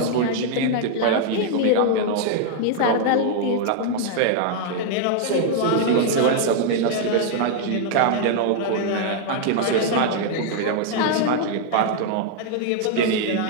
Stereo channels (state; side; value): different; both; correlation 0.00